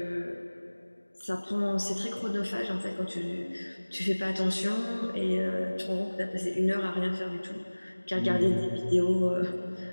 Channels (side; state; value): both; inverted; correlation -1.00